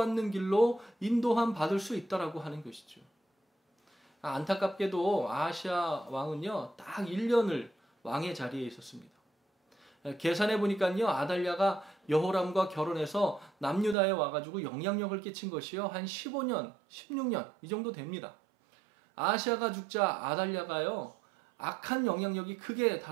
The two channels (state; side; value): drops out; left; at 14.0 s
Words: 길로 인도함 받을 수 있다라고 하는 것이죠. 안타깝게도 아하시아 왕은요, 딱 1년을 왕의 자리에 있었습니다. 계산해 보니까요, 아달랴가 여호람과 결혼해서 남유다에 와가지고 영향력을 끼친 것이요, 한 15년, 16년 이 정도 됩니다. 아하시아가 죽자 아달랴가요, 악한 영향력이 크게